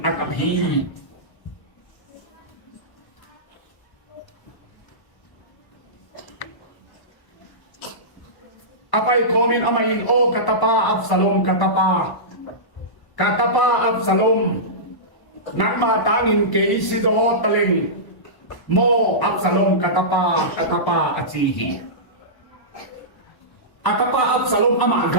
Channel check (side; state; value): right; late; 1.1 ms